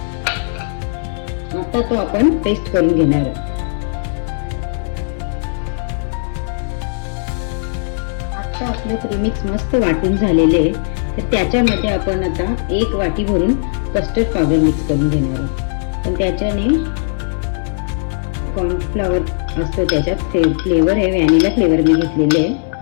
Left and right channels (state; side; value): silent; right; digital silence